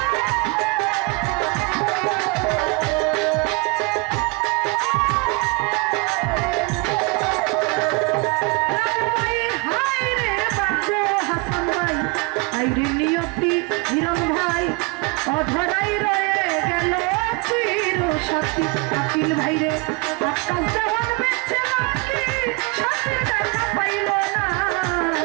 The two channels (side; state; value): left; quieter; 27.6 dB